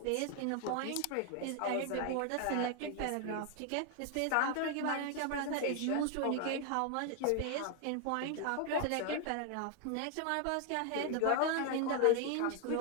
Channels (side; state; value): both; different; correlation 0.01